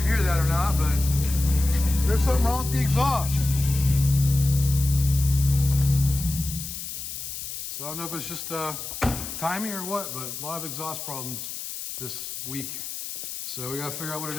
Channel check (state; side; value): noise; left; hiss, 7 dB below the sound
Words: hear that or not, but there's something wrong with the exhaust. So I don't know if it's just timing or what, but a lot of exhaust problems this week. So we gotta figure out what it